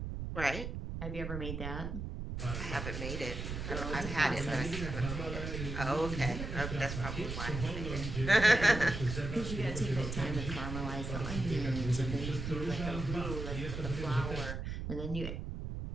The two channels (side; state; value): right; noise; rumble, 5 dB below the sound